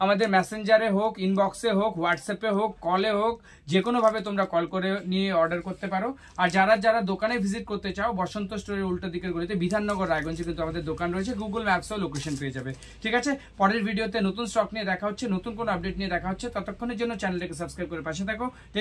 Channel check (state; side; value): identical; both; correlation 1.00